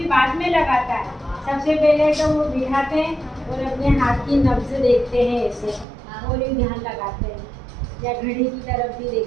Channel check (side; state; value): left; drops out; at 5.9 s